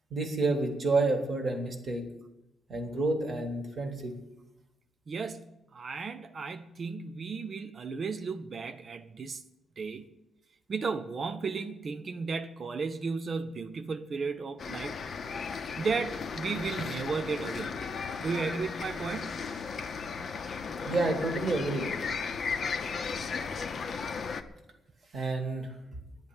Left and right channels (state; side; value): normal; both; correlation 0.79